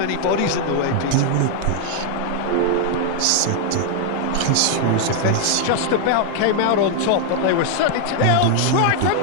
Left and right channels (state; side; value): different; both; correlation 0.00